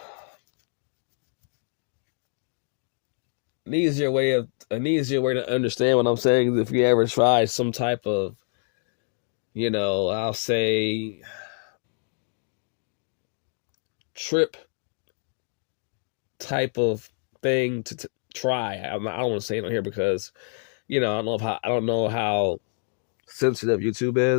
An easier way to understand what I'm saying is if you ever try some type of, I'll say, trip type of thing to try. I don't want to say it on here because, I don't know how sensitive YouTube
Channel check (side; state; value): right; silent; 55 dB below the other